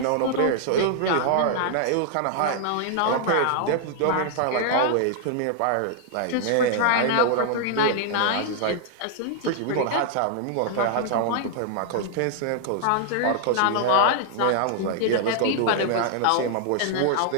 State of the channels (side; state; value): both; different; correlation -0.01